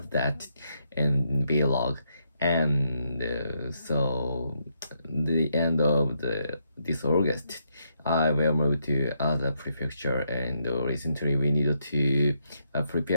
that in vlog, and so the end of this August, I will move to other prefecture, and recently we needed to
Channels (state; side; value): inverted; both; correlation -0.79